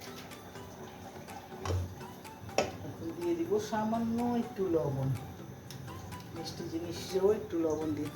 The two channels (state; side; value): identical; both; correlation 1.00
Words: এখন দিয়ে দিব সামান্য একটু লবণ। মিষ্টি জিনিসেও একটু লবণ